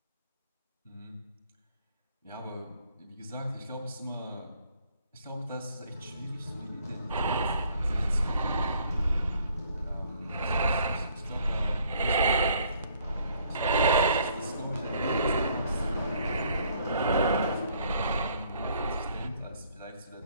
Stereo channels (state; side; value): inverted; both; correlation -0.63